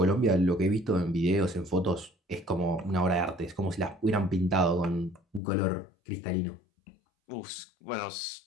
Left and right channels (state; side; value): drops out; right; at 5.4 s